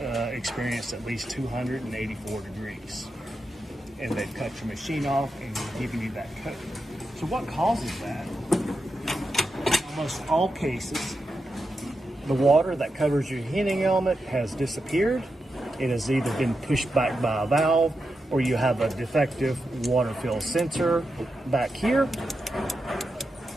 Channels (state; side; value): normal; both; correlation 0.88